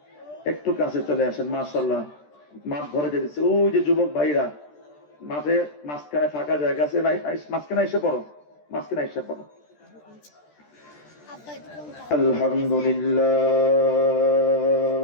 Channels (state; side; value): late; right; 13 ms